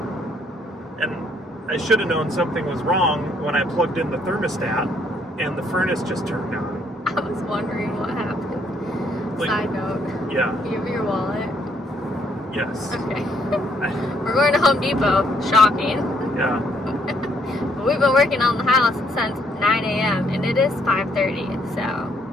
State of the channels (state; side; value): normal; both; correlation 0.69